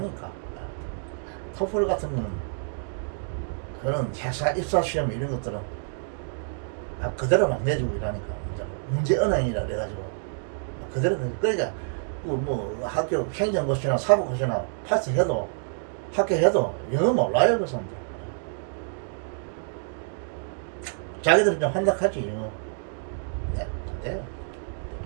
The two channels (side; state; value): left; silent; digital silence